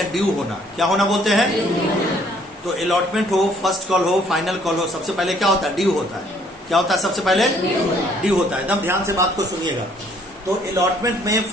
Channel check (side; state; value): both; normal; correlation 0.62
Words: ड्यू होना। क्या होना बोलते हैं? तो अलॉटमेंट हो, फर्स्ट कॉल हो, फाइनल कॉल हो, सबसे पहले क्या होता है? ड्यू होता है। क्या होता है? सबसे पहले ड्यू होता है। एकदम ध्यान से बात को सुनिएगा। तो अलॉटमेंट में,